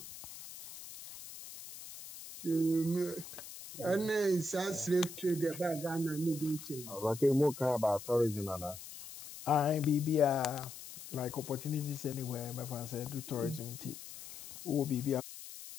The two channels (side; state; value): left; noise; hiss, 13 dB below the sound